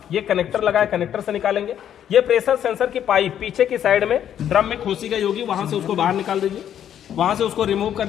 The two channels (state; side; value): quieter; right; 9.9 dB